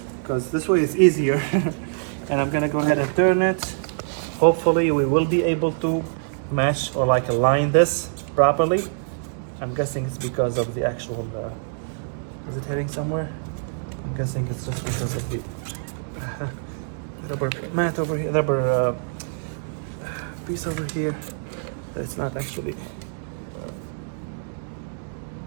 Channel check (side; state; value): left; silent; digital silence